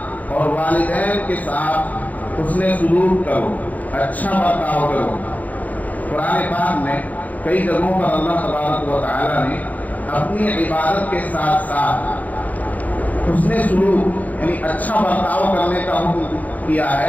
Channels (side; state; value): right; late; 0.078 ms